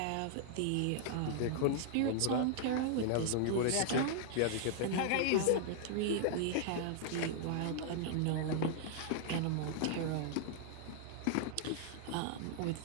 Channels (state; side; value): different; both; correlation -0.01